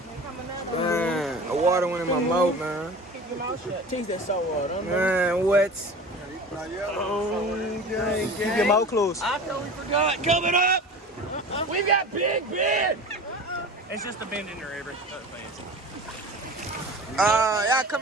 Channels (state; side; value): normal; both; correlation 0.36